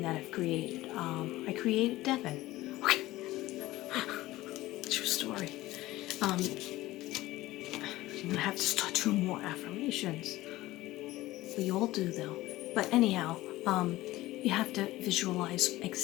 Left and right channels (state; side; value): quieter; right; 17.4 dB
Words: that I've created. I created Devin. Okay. True story. I'm gonna have to start doing more affirmations. We all do though. But anyhow, you have to visualize